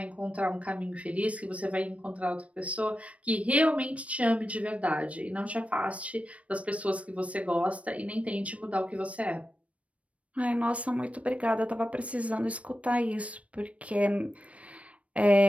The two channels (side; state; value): left; late; 0.064 ms